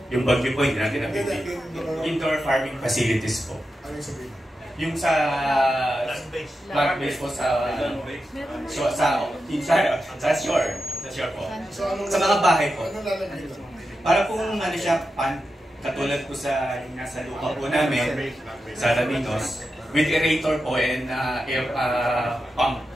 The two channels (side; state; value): both; normal; correlation 0.89